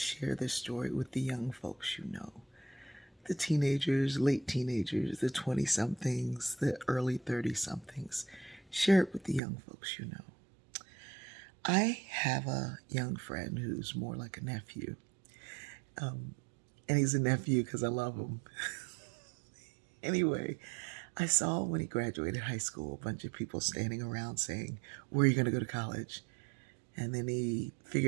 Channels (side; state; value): left; drops out; at 9.4 s